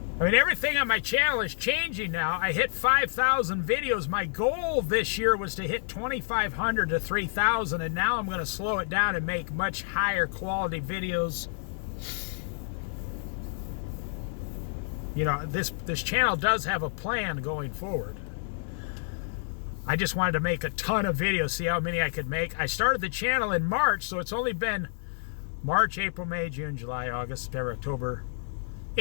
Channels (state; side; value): silent; right; digital silence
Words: everything on my channel is changing now. I hit 5,000 videos. My goal this year was to hit 2,500 to 3,000, and now I'm going to slow it down and make much higher quality videos. You know, this channel does have a plan going forward. I just wanted to make a ton of videos, see how many I could make. I started the channel in March, so it's only been March, April, May, June, July, August, September, October.